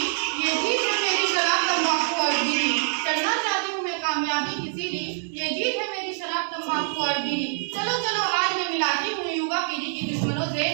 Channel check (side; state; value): left; silent; 62 dB below the other